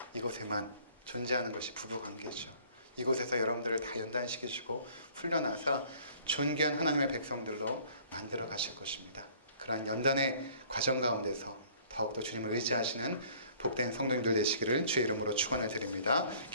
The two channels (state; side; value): inverted; both; correlation -0.55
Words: 이곳에만 존재하는 것이 부부관계죠. 이곳에서 여러분들을 다 연단시키시고 훈련하사 존귀한 하나님의 백성들로 만들어 가실 것입니다. 그러한 연단의 과정 가운데서 더욱더 주님을 의지하시는 복된 성도님들 되시기를 주의 이름으로 축원을 드립니다.